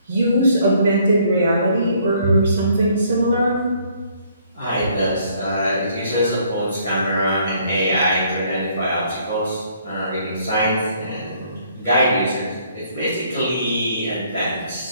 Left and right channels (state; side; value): inverted; both; correlation -0.64